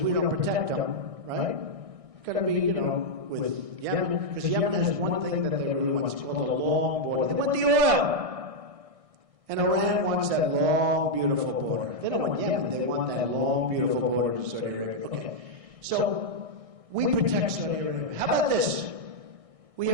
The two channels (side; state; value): left; late; 1.6 ms